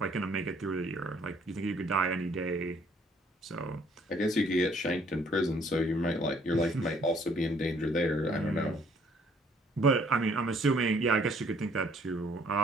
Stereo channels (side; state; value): both; normal; correlation 0.62